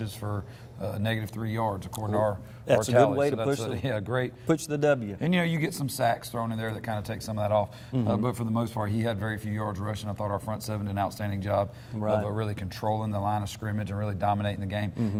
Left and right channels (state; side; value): identical; both; correlation 1.00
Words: for -3 yards, according to our That's tally. a good way to push push the W. And, you get some sacks thrown in there that kind of take some of that off. But for the most part, he had very few yards rushing. I thought our front seven did an outstanding job of really controlling the line of scrimmage and really dominating the game.